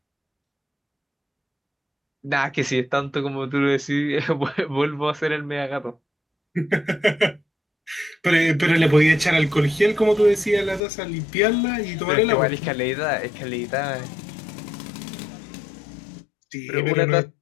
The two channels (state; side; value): drops out; right; at 10.8 s